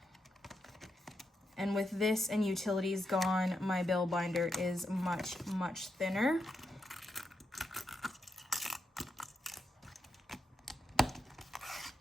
And with this and utilities gone, my bill binder is much, much thinner.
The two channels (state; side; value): normal; both; correlation 0.84